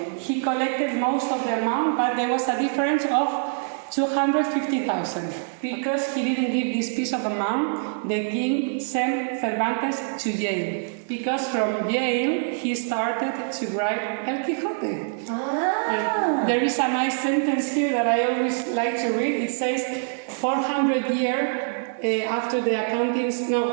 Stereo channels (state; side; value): silent; left; digital silence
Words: he collected most of the amount, but there was a difference of 250,000. Because he didn't give this piece of amount, the king sent Cervantes to jail. Because from jail, he started to write El Quijote. There is a nice sentence here that I always like to read. It says, 400 years